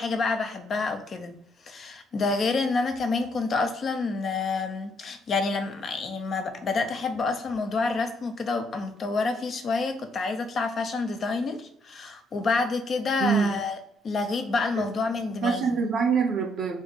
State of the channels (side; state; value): both; normal; correlation 0.72